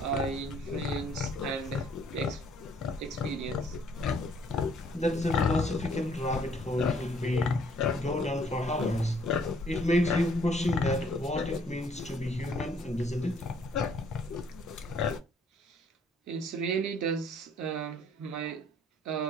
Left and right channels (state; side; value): normal; both; correlation 0.62